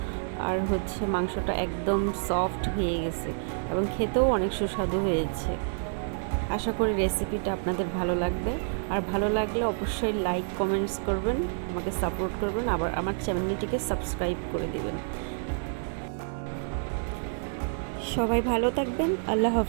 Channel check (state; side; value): silent; left; digital silence